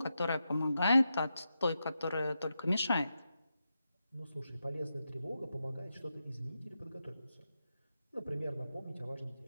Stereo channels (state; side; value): inverted; both; correlation -0.88